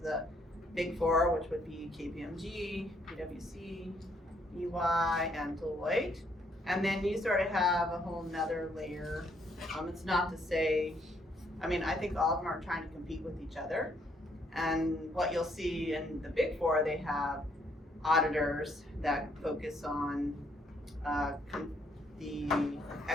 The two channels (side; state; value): both; normal; correlation 0.70